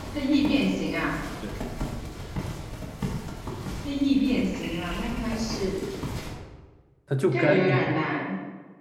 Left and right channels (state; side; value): identical; both; correlation 1.00